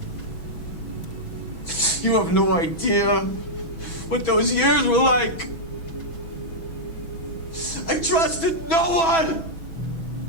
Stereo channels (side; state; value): right; late; 6.1 ms